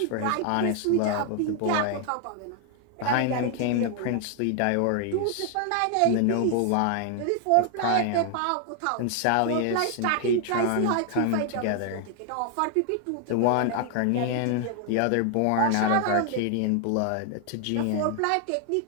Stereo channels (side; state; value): both; different; correlation 0.00